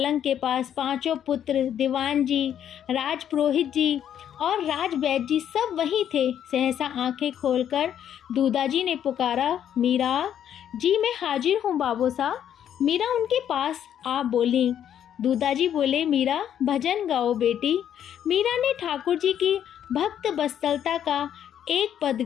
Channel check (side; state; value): right; quieter; 9.8 dB